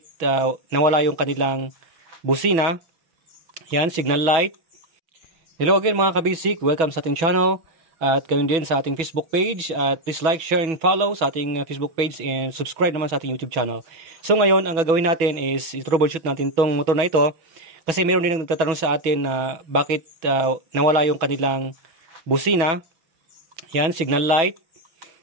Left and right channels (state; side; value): late; left; 6.1 ms